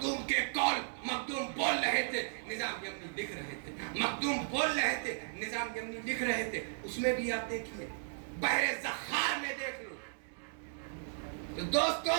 کے قول مخدوم بول رہے تھے، نظام یمنی لکھ رہے تھے، مخدوم بول رہے تھے، نظام یمنی لکھ رہے تھے. اس میں بھی آپ دیکھیے، بحر زخار میں دیکھ لو. تو دوستو،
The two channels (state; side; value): silent; left; digital silence